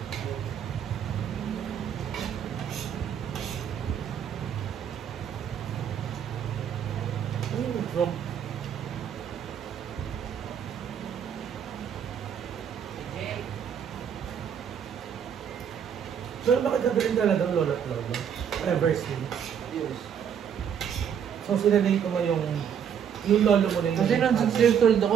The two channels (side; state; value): left; quieter; 8.3 dB